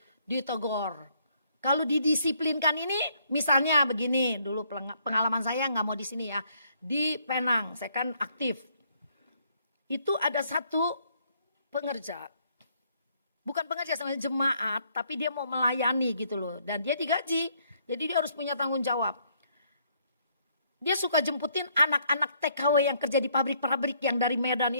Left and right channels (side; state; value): both; inverted; correlation -0.69